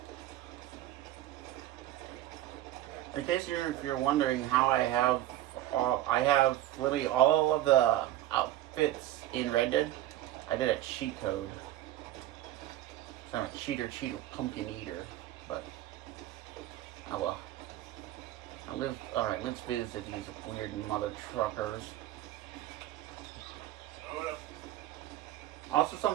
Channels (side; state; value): left; quieter; 14.0 dB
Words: In case you're wondering how I have literally all of the outfits in Red Dead. I did a cheat code. It's not a cheater, pumpkin eater, but oh well. Alright, let's visit these weird mother truckers. Also,